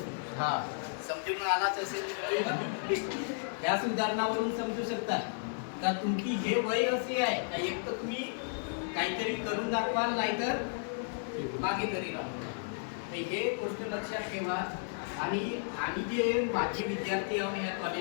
हा समजून आलाच असेल. या उदाहरणावरून समजू शकता का तुमची हे वय असे आहे का एक तर तुम्ही काहीतरी करून दाखवाल नाहीतर मागे तरी राहा. हे गोष्ट लक्षात ठेवा. आणि आम्ही जे माजी विद्यार्थी आहोत या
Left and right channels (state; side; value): silent; right; digital silence